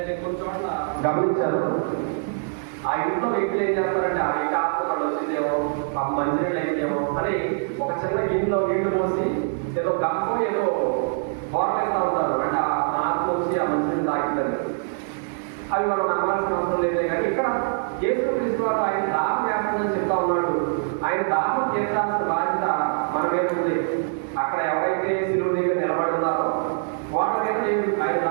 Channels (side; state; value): left; silent; 62 dB below the other